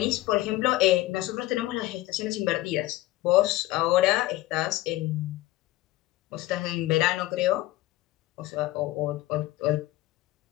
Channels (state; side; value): quieter; right; 17.1 dB